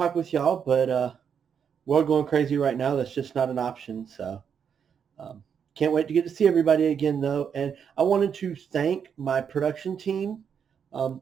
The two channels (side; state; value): left; quieter; 7.4 dB